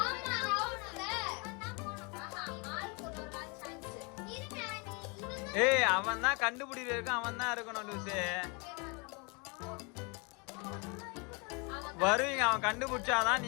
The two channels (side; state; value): right; quieter; 31.5 dB